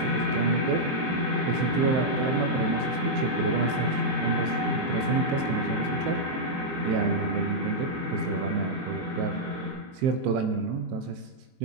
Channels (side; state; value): left; late; 23 ms